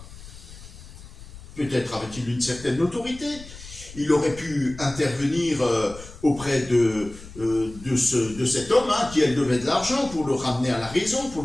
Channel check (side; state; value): left; noise; rumble, 16 dB below the sound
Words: Peut-être avait-il une certaine autorité. Il aurait pu intervenir auprès de cet homme qui, elle, devait de l'argent pour le ramener à la raison, pour